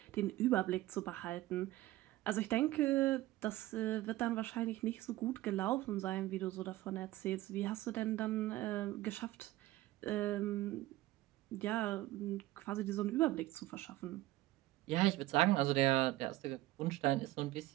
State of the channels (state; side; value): quieter; left; 16.8 dB